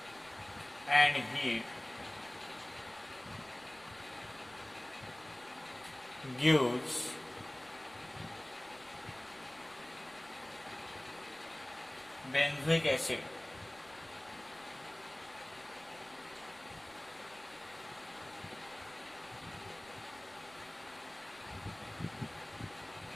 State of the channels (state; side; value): noise; right; rumble, 25 dB below the sound